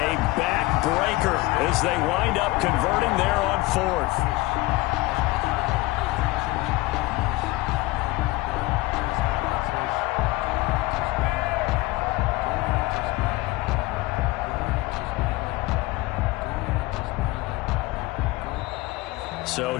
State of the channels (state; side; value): quieter; right; 20.5 dB